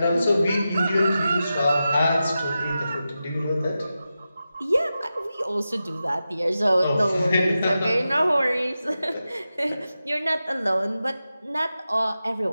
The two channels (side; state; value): both; inverted; correlation -0.92